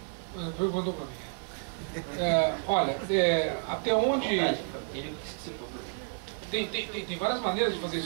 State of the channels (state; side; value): silent; left; 55 dB below the other